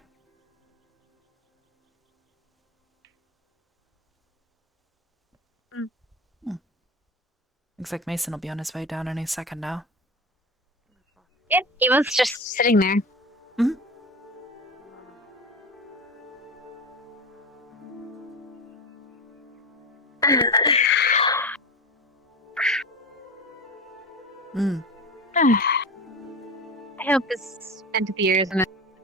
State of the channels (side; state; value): both; normal; correlation 0.26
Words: Looks like Mason will be on his way down any second now. Yeah, he was just sitting there. Mm. I hope this end of the year isn't